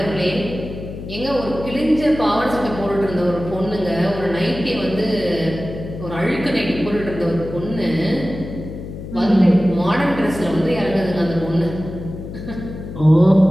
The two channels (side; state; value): left; noise; hum, 10 dB below the sound